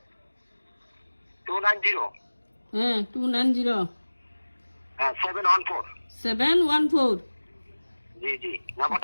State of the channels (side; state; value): both; inverted; correlation -1.00